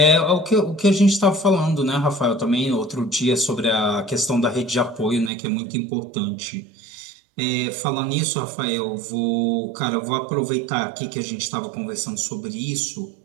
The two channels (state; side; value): drops out; left; at 5.3 s